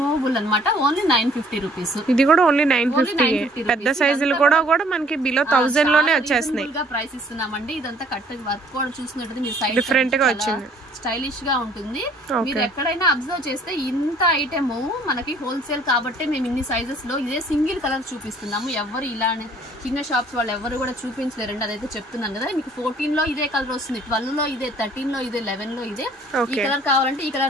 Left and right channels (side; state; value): both; normal; correlation 0.58